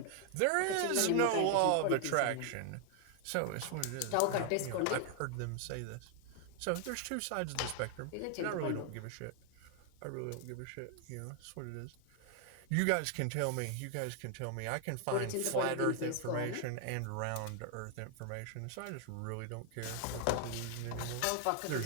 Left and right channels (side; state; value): both; different; correlation 0.00